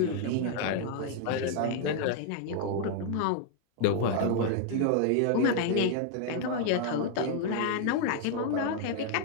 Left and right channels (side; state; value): both; different; correlation 0.00